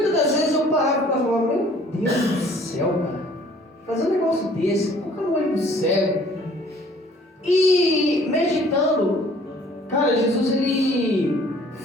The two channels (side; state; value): both; normal; correlation 0.55